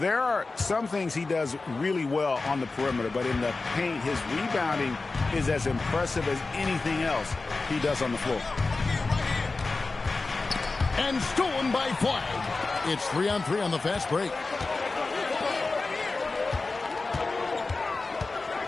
are some things he does really well on the perimeter, but in the paint, his rebounding is as impressive as anything else he does on the floor. And stolen by Flag. It's 3-on-3 on the fast break.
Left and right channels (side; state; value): right; quieter; 3.7 dB